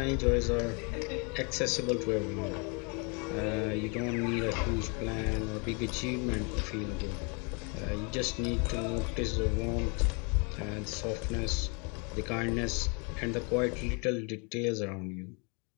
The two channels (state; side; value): quieter; right; 33.8 dB